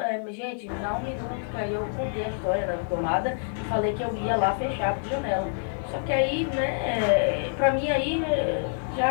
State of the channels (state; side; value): silent; right; digital silence